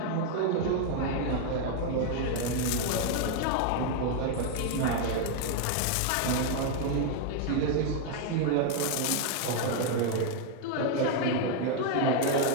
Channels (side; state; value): both; different; correlation 0.00